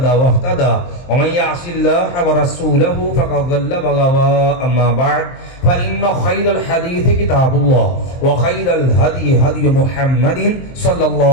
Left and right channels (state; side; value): late; right; 23 ms